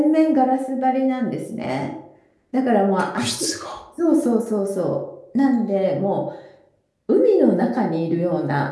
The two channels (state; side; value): identical; both; correlation 1.00